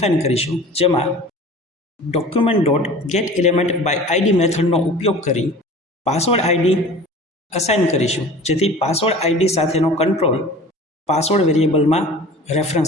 કરીશું, જેમાં document dot get element by ID મેથડનો ઉપયોગ કરી પાસવર્ડ આઈડી અસાઇન કરીશું, જેથી પાસવર્ડ આઈડી સાથેનો કંટ્રોલ પાસવર્ડ વેરિયેબલમાં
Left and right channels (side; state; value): both; normal; correlation 0.42